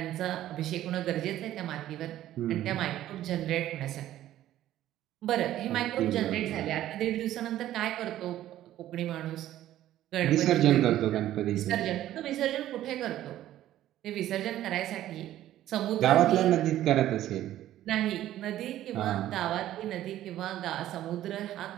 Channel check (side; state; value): left; quieter; 13.2 dB